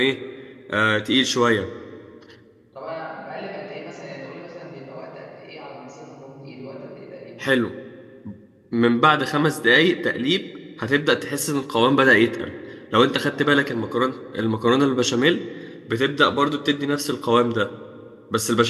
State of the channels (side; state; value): both; identical; correlation 1.00